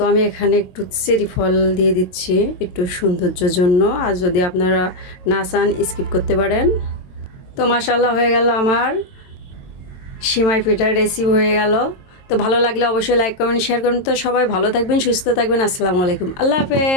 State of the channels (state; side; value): late; right; 22 ms